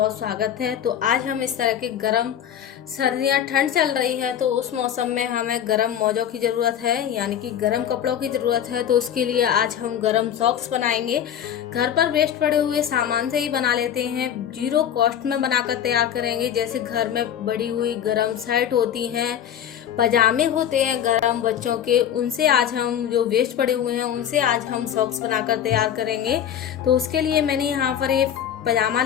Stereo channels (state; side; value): quieter; right; 9.6 dB